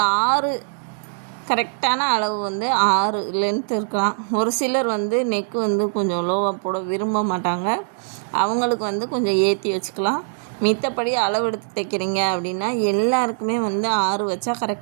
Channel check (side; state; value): left; silent; digital silence